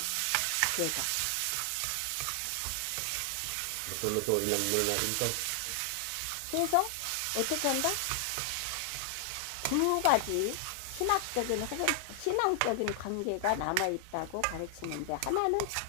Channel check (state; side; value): different; both; correlation 0.00